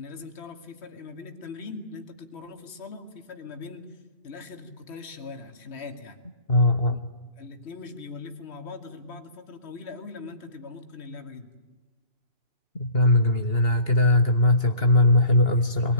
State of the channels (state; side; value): late; right; 3.1 ms